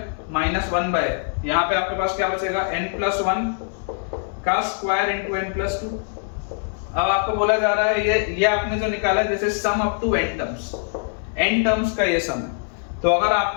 माइनस 1 बाय, यहाँ पे आपके पास क्या बचेगा, n प्लस 1 का स्क्वायर इंटू n प्लस 2। अब आपको बोला जा रहा है ये आपने जो निकाला है जैसे sum up to n terms का ये सम है। तो अगर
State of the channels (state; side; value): silent; right; digital silence